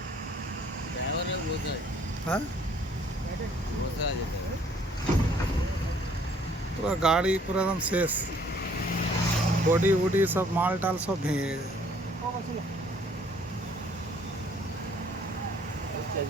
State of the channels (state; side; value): normal; both; correlation 0.60